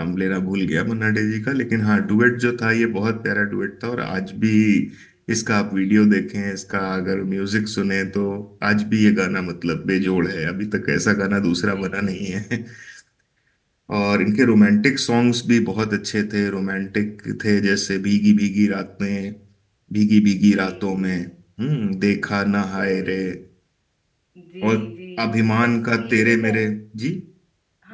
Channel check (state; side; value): identical; both; correlation 1.00